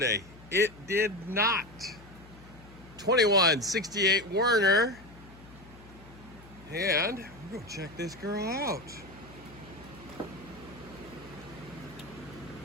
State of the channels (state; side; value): noise; left; hum, 20 dB below the sound